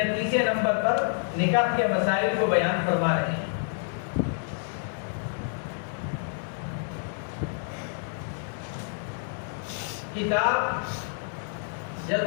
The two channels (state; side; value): silent; right; digital silence